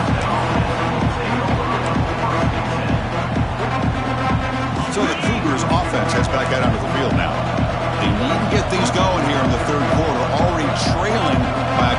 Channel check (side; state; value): both; identical; correlation 1.00